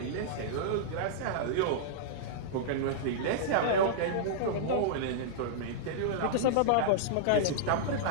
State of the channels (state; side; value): different; both; correlation -0.02